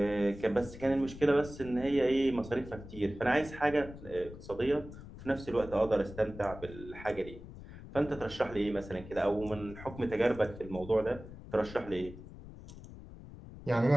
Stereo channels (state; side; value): noise; left; rumble, 15 dB below the sound